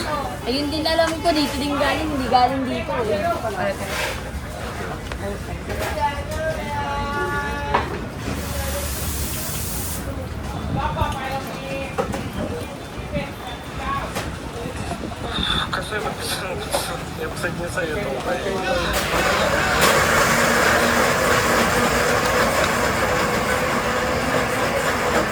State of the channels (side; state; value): both; identical; correlation 1.00